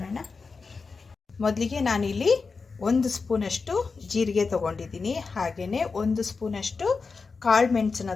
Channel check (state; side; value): quieter; right; 4.6 dB